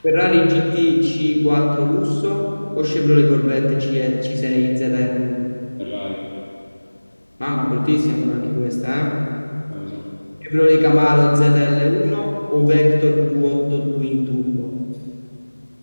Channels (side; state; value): both; inverted; correlation -1.00